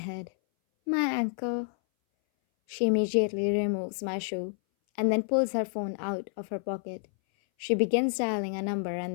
My ankle. She immediately removes my shoe and then pulls her phone out of her pocket. She begins dialing a number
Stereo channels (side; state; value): right; silent; 58 dB below the other